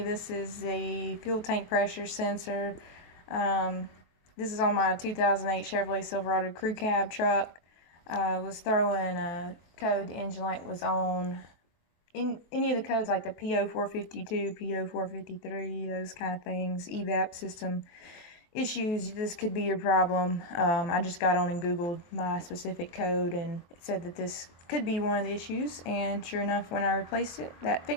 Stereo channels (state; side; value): late; right; 23 ms